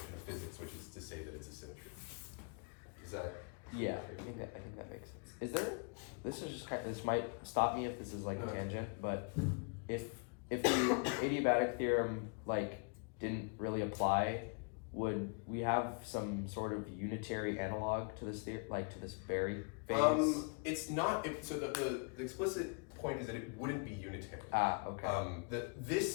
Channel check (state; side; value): quieter; right; 37.3 dB